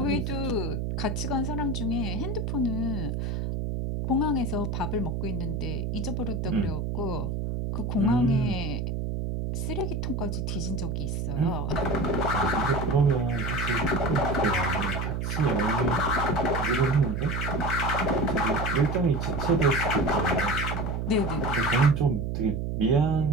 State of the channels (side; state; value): right; noise; hum, 2 dB below the sound